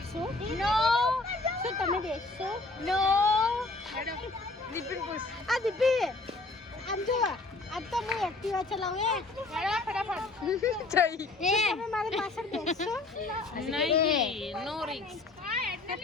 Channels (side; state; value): right; quieter; 3.4 dB